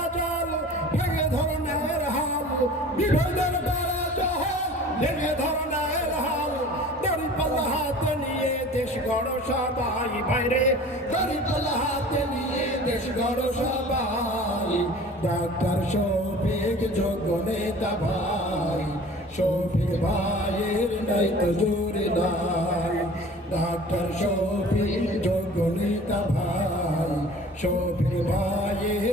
জল ভেঙে ধর ন্যায়ের হাল, বিভেদের বেড়া জল ভেঙে ধর ন্যায়ের হাল, দড়িপাল্লা হাতে নিয়ে দেশ গড় সবাই ভাইরে, দড়িপাল্লা হাতে নিয়ে দেশ গড় সবাই, ডাক্তার শফিক যোগ্য নেতা ভাই, শফিক ভাইয়ের নাই তো জুড়ি নাই, ডাক্তার শফিক যোগ্য নেতা ভাই, শফিক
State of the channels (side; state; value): both; normal; correlation 0.44